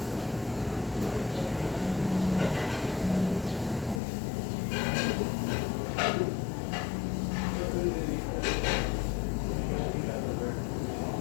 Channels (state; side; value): drops out; right; at 4.0 s